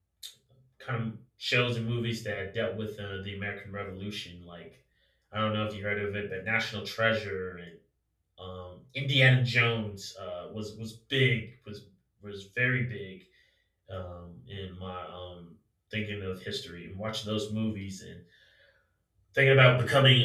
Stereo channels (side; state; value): both; identical; correlation 1.00